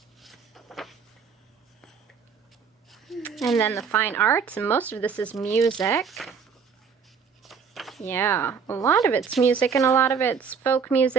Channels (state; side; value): quieter; left; 6.1 dB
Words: And then the fine arts, and most of this is music. Yeah, a lot of it's music, and a lot of it's folk